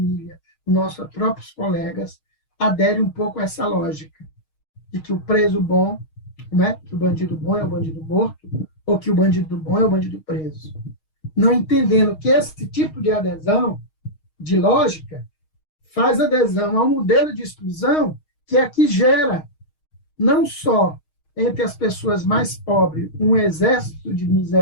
os nossos próprios colegas aderem um pouco a essa lógica de que o preso bom, né, que o bandido bom é o bandido morto, ou que o bandido bom é o bandido preso. Não entendendo que esse tipo de adesão, de lógica, faz adesão a um modelo de exclusão que é que gera, não só entre as pessoas mais pobres, um exército de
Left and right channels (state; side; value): late; right; 6.4 ms